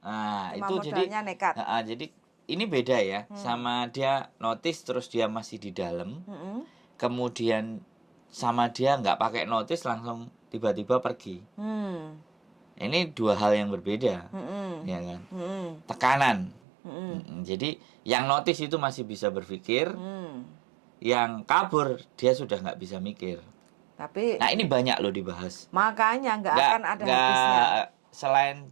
Nah, Cuma itu modalnya nekat. jadi ini beda ya sama dia notice terus dia masih di dalam. Kemudian sama dia nggak pakai notice langsung tiba-tiba pergi. Ini dua hal yang berbeda, ya kan? Tekanan. Jadi yang notice itu masih bisa berpikir, yang kabur dia sudah nggak bisa mikir. Tapi nah ini banyak loh dibahas. Makanya nggak akan ada habisnya. Selain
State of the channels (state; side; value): drops out; left; at 16.6 s